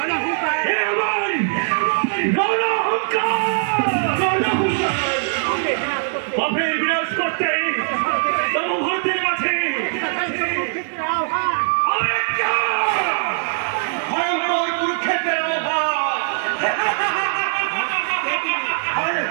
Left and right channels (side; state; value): left; silent; digital silence